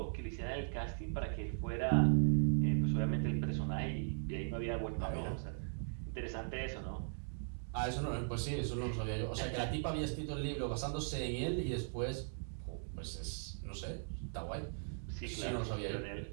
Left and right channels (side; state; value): left; silent; digital silence